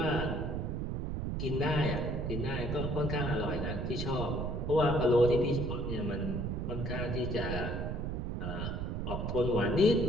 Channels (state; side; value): noise; right; rumble, 2 dB below the sound